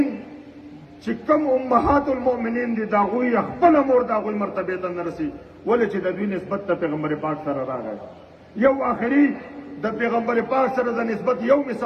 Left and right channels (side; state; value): both; identical; correlation 1.00